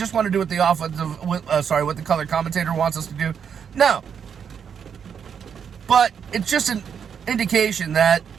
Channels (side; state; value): left; quieter; 7.4 dB